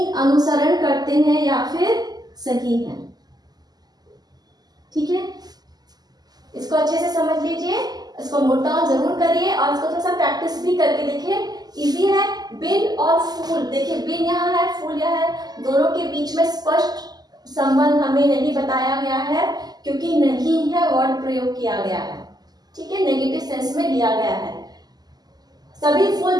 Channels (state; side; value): late; left; 0.20 ms